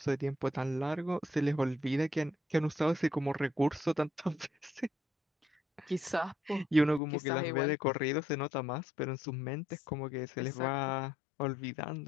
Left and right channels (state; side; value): drops out; right; at 7.0 s